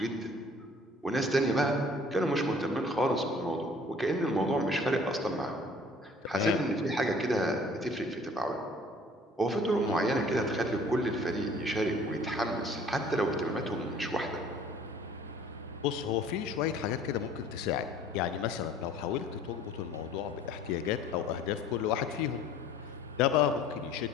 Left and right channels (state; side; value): normal; both; correlation 0.52